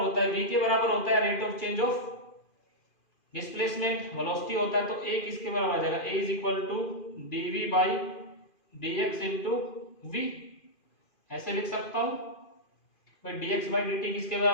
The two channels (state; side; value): late; right; 2.5 ms